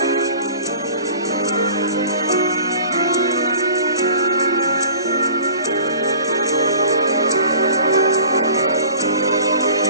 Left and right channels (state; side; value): inverted; both; correlation -0.45